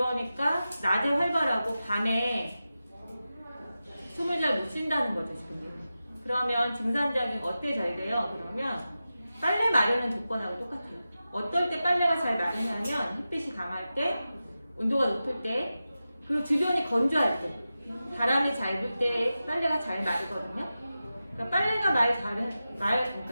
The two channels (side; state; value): both; inverted; correlation -0.93